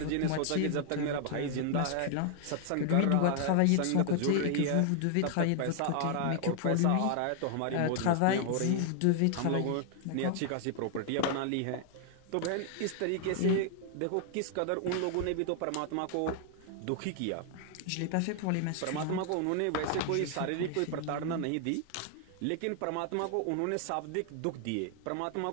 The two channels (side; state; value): both; different; correlation 0.00